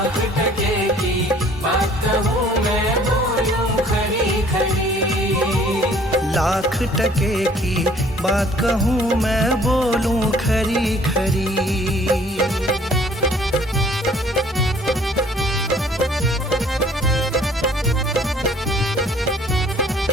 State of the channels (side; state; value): both; normal; correlation 0.56